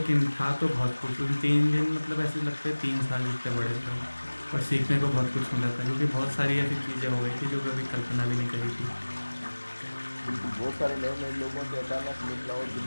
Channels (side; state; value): both; inverted; correlation -1.00